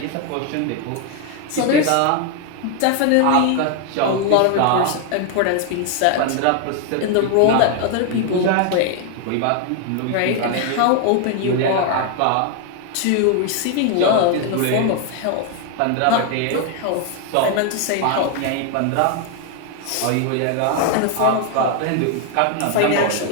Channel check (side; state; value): both; different; correlation 0.01